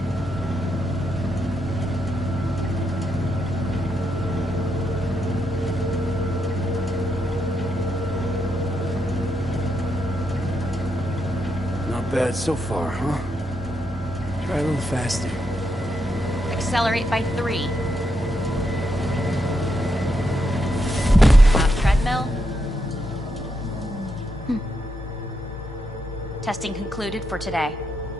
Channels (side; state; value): both; normal; correlation 0.81